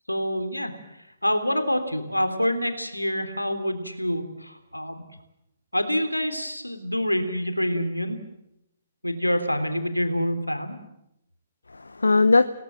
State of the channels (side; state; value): both; inverted; correlation -0.95